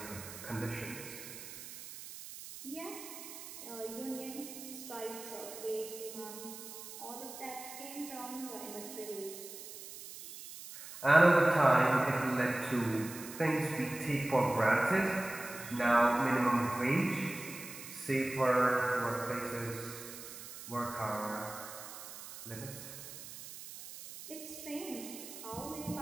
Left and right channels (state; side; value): noise; right; hiss, 12 dB below the sound